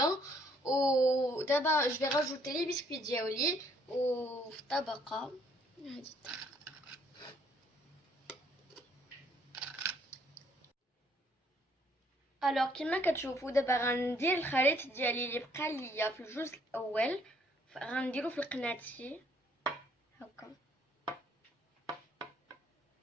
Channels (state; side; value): normal; both; correlation 0.66